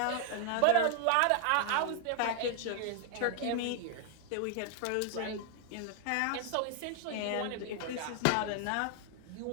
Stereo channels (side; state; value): both; different; correlation 0.00